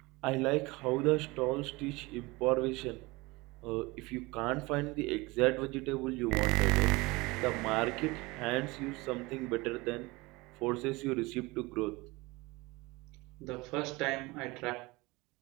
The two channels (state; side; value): quieter; left; 23.2 dB